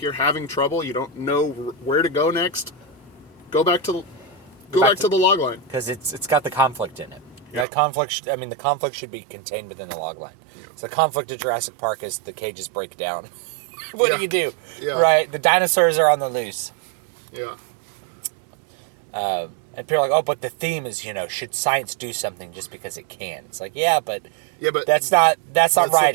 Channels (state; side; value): drops out; left; at 7.7 s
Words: you're having trouble, you don't know where to go next, go back to the log line, because it's got the conflict in it. Yeah. That conflict. The conflict should be contained within the log line. Yeah. So the conflict of Jurassic Park is the cages break down. What do you do? Yeah. Right, the dinosaurs are on the loose. Yeah. And people are like, oh, but the theme is, should science do something just because it can? It's like, but that's not writing. That's not